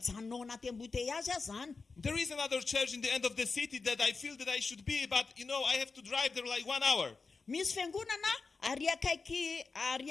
ao anaty embouteillage zany. There is another church in the end of the city that I feel that I should be, but I have to drive there like 1 hour. Misy fiangonana ary akaiky ary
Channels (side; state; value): right; quieter; 4.4 dB